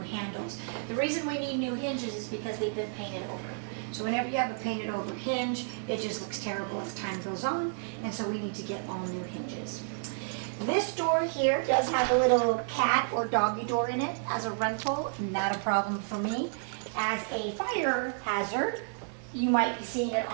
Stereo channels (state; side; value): silent; left; digital silence